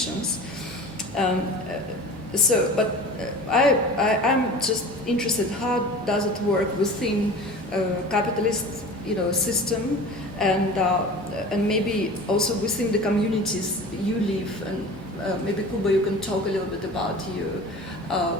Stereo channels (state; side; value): normal; both; correlation 0.38